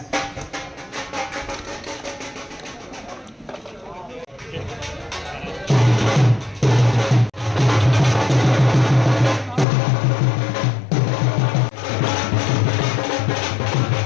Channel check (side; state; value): right; drops out; at 9.7 s